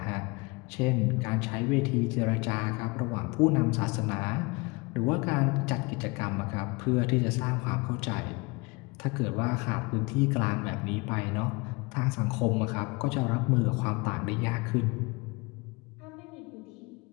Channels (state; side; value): quieter; right; 26.9 dB